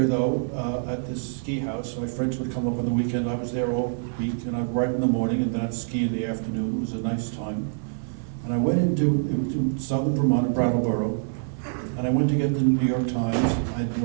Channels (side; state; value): left; silent; 61 dB below the other